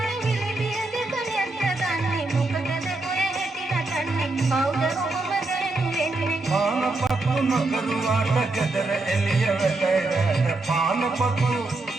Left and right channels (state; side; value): quieter; left; 3.0 dB